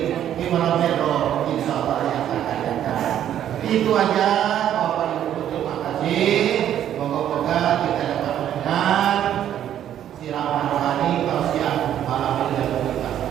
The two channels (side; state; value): left; quieter; 10.7 dB